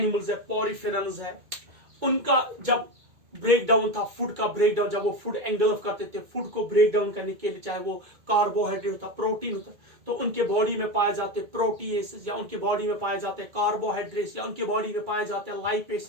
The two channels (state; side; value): late; left; 2.2 ms